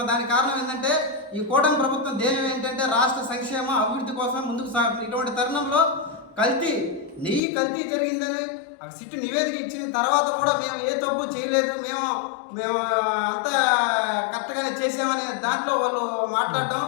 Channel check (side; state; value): right; drops out; at 7.4 s